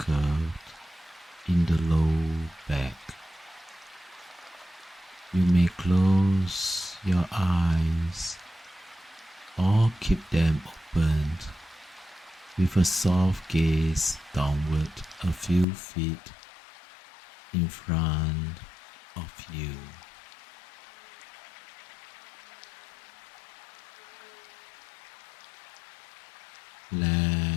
in the low back. You may close your eyes or keep them open with a soft gaze downward a few feet in front of you.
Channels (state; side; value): drops out; right; at 15.7 s